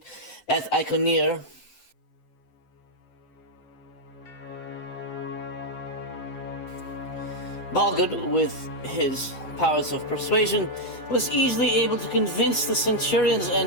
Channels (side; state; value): right; late; 7.8 ms